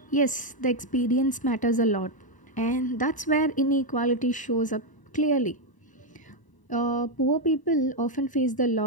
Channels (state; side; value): late; right; 1.0 ms